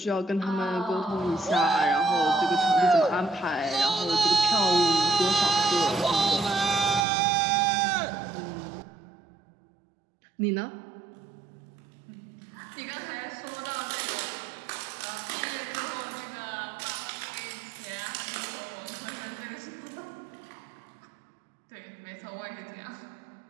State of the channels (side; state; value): left; drops out; at 7.1 s